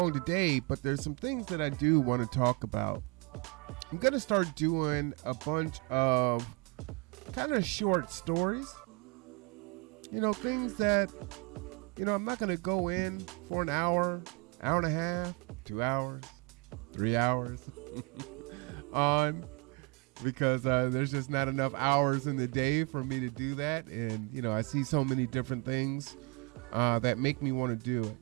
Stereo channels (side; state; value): left; quieter; 30.9 dB